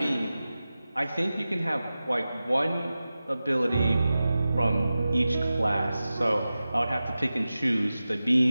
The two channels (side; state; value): both; inverted; correlation -0.95